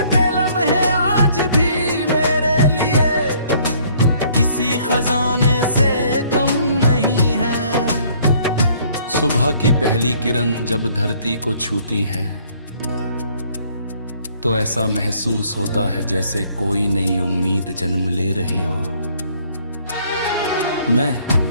लम्हे आज भी मेरे लिए किसी खजाने से कम नहीं है। सुबह की पहली किरण जब धरती को छूती है, तो ऐसा महसूस होता है जैसे कोई नई उम्मीद जन्म ले रही हो। मैं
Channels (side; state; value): both; inverted; correlation -0.61